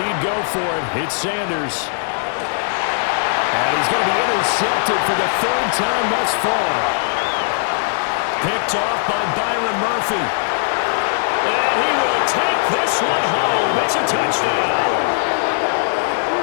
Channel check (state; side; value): silent; right; digital silence